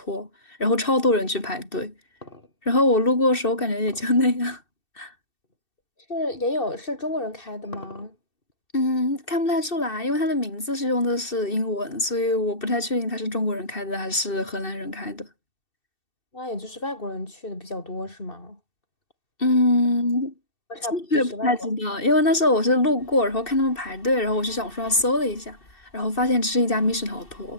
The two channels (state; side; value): late; right; 2.6 ms